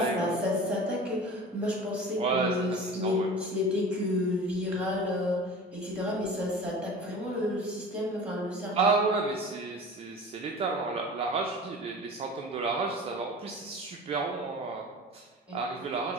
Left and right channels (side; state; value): both; normal; correlation 0.38